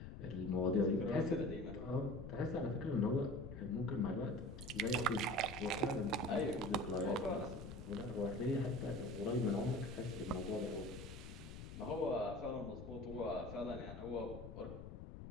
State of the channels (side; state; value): left; noise; rumble, 10 dB below the sound